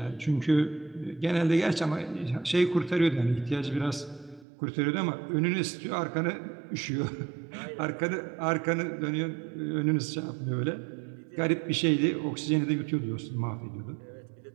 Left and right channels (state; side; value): drops out; left; at 4.5 s